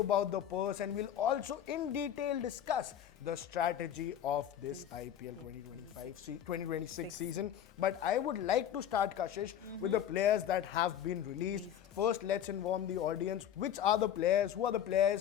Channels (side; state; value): right; quieter; 10.1 dB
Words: the purse and we'll also in detail discuss the strategy of this IPL 2026 season. But I would like to start, Kashish, with the players that have been released. First, let's inform the audience which are the players, who are the